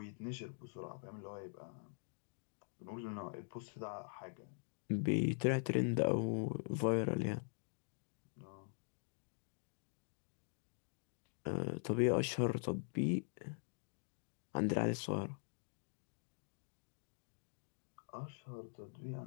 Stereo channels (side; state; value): right; silent; digital silence